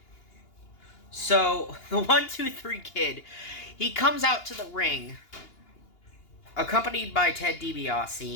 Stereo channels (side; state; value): right; late; 2.8 ms